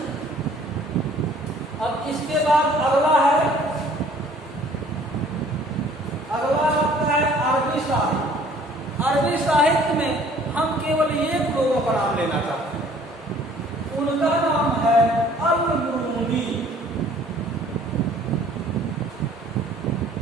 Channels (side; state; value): both; normal; correlation 0.55